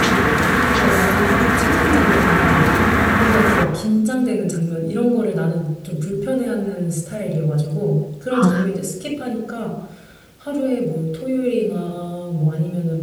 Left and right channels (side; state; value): both; identical; correlation 1.00